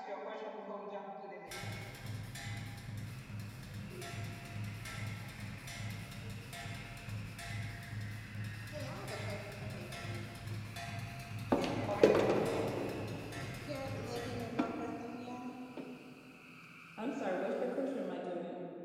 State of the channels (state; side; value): identical; both; correlation 1.00